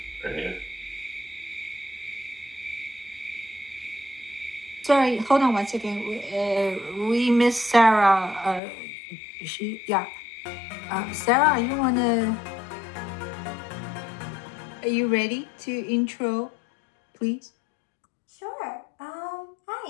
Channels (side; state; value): right; drops out; at 8.6 s